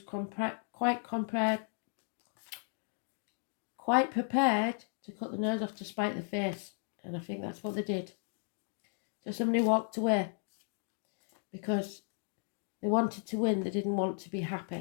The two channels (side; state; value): right; silent; 54 dB below the other